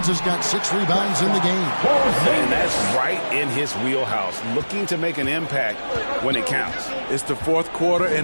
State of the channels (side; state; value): both; inverted; correlation -1.00